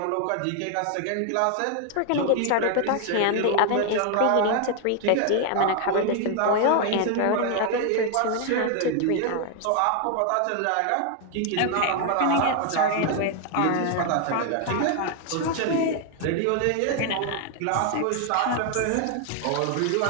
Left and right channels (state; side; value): different; both; correlation 0.00